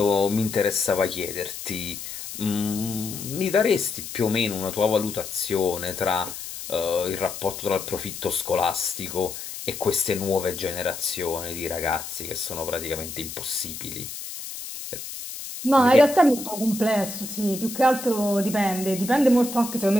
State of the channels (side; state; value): left; noise; hiss, 9 dB below the sound